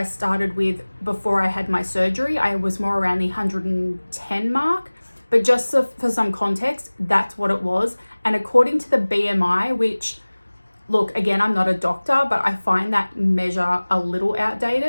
started with before I had my surgery. I was more around the 110 mark. But just for some context, that's what it was. And according to the BMI, which, look, again, I'm not a doctor, but I find that measure a little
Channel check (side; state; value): both; inverted; correlation -1.00